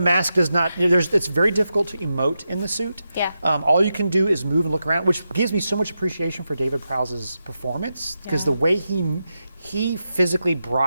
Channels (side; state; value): both; inverted; correlation -0.88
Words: does not. It's very difficult to emote in the suit. Yeah. All you can do is move and look around, which gives me so much appreciation for David Prowse's performance because Yeah. the way he physically